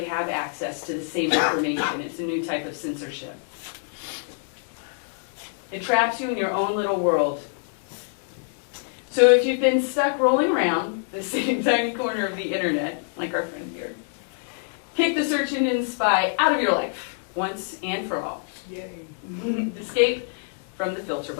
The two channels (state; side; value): silent; right; 61 dB below the other